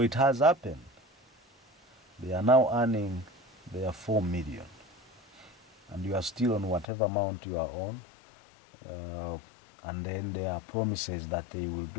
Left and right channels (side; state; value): right; drops out; at 6.9 s